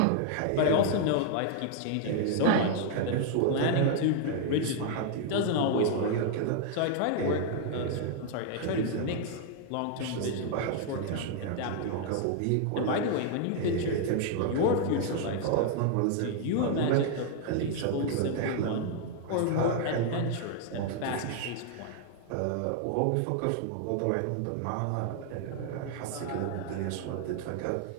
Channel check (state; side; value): different; both; correlation 0.00